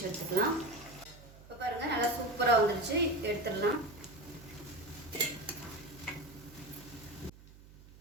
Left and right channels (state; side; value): noise; right; hum, 21 dB below the sound